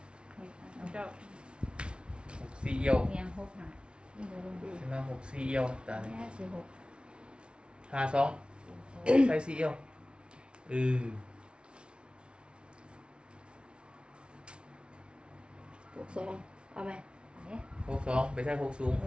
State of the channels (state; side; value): late; left; 0.057 ms